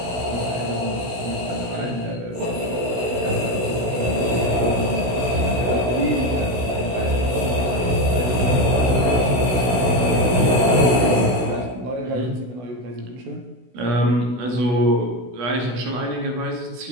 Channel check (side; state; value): left; late; 16 ms